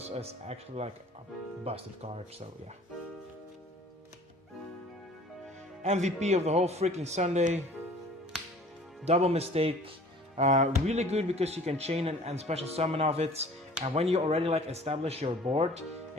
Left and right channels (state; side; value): normal; both; correlation 0.48